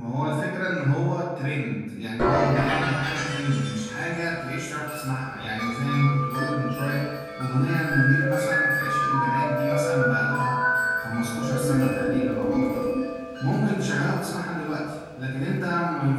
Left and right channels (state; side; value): identical; both; correlation 1.00